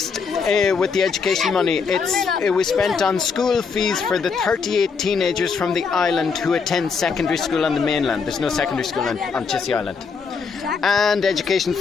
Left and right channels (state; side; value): quieter; right; 5.4 dB